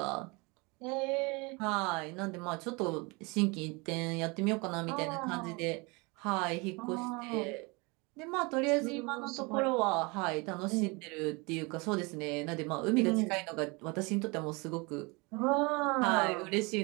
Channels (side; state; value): left; quieter; 27.7 dB